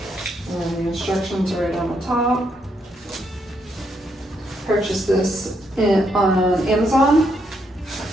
And the instructions are right on the top. Purchased this on Amazon.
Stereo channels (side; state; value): both; normal; correlation 0.76